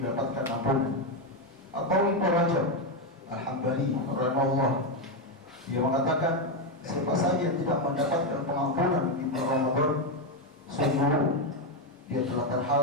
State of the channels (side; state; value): both; normal; correlation 0.06